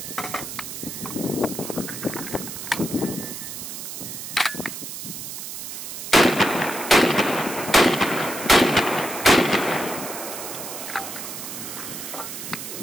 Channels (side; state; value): right; noise; hiss, 8 dB below the sound